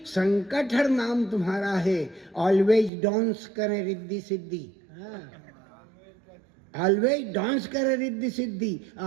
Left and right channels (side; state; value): left; drops out; at 2.9 s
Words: संकटहर नाम तुम्हारा है, ऑलवेज डांस करें रिद्धि सिद्धि। ऑलवेज डांस करे Riddhi Siddhi,